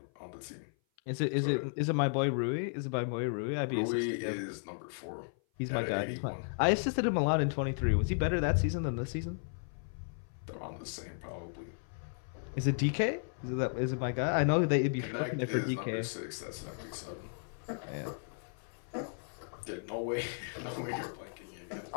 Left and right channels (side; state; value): right; silent; 55 dB below the other